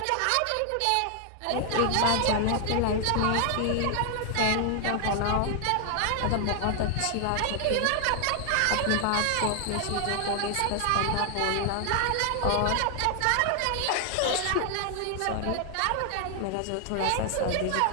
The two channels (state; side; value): different; both; correlation 0.00